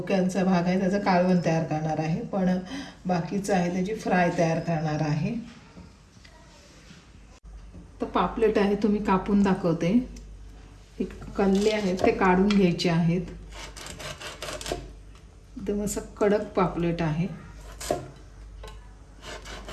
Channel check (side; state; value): both; identical; correlation 1.00